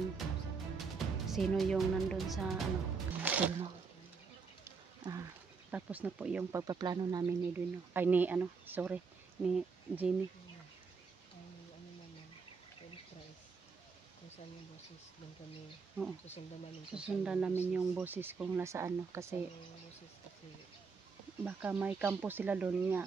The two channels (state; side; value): quieter; left; 5.0 dB